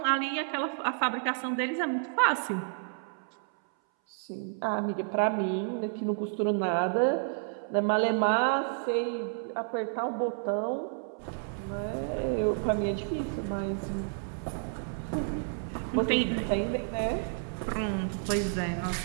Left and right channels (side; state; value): left; silent; 57 dB below the other